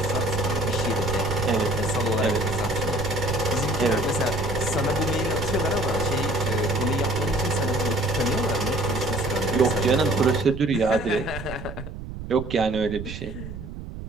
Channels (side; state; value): right; noise; rumble, 10 dB below the sound